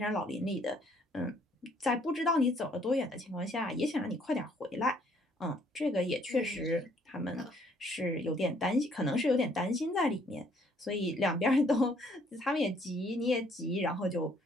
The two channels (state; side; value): normal; both; correlation 0.64